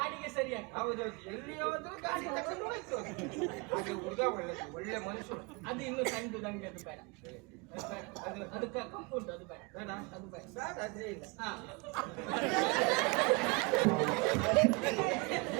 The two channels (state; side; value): quieter; left; 28.3 dB